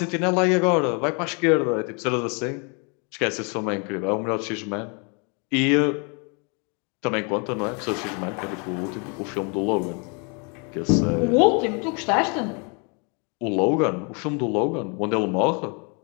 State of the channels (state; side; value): quieter; right; 35.1 dB